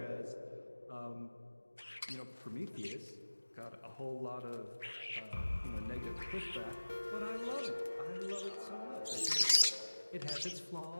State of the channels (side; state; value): both; inverted; correlation -1.00